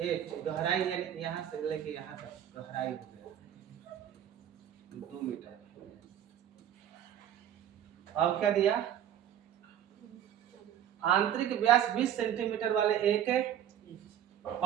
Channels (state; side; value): quieter; left; 10.5 dB